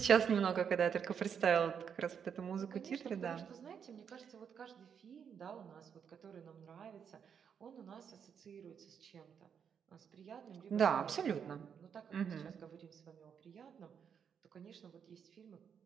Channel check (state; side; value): quieter; left; 7.4 dB